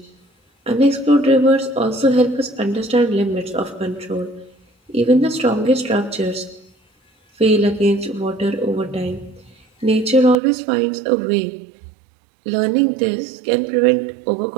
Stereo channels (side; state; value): left; drops out; at 10.4 s